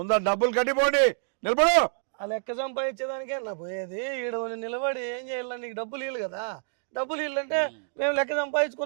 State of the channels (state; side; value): silent; left; digital silence